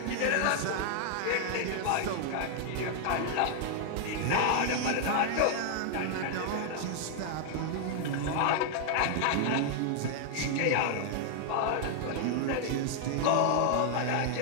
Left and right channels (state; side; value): different; both; correlation 0.00